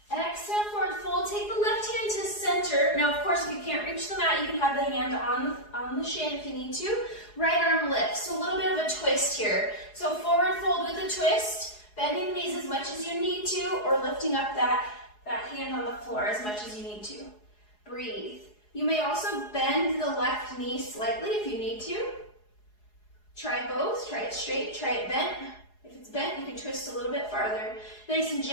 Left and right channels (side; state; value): right; late; 4.8 ms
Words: Exhale, forward fold. Take the left hand to center. Now, of course, if you can't reach the mat, you can have the hand on the shin if you need to. Right arm lifts. So a little bit of a twist here. So forward fold with a twist, bending the knees as much as you need to, or lifting up that hand on the floor as much as you need to. Breathe. You may also bend the left knee slightly if you need to. Try both. Try it straight, try it bent. If it's bent, you can twist a little bit farther. Nice and